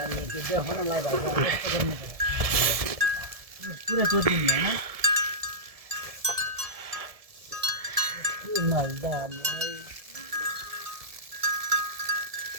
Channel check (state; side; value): late; left; 1.7 ms